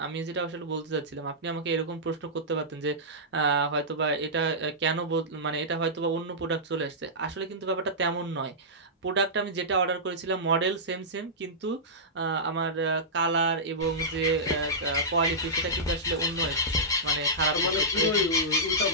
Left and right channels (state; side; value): normal; both; correlation -0.14